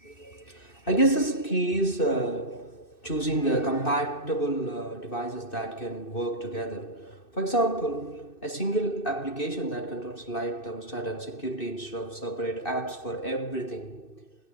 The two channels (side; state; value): right; late; 2.6 ms